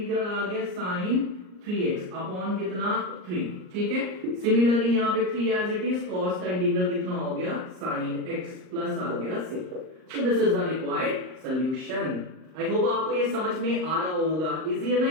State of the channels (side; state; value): left; late; 38 ms